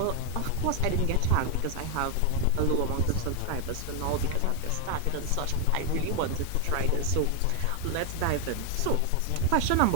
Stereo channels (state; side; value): different; both; correlation 0.00